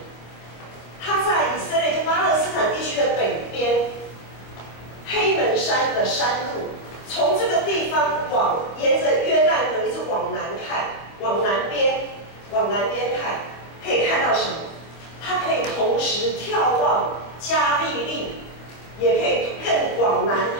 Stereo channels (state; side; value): late; right; 26 ms